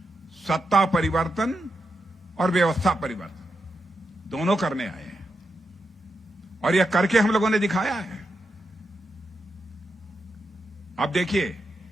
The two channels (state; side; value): normal; both; correlation 0.86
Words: सत्ता परिवर्तन और व्यवस्था परिवर्तन दोनों करने आए हैं, और यह करके हम लोगों ने दिखाया है। अब देखिए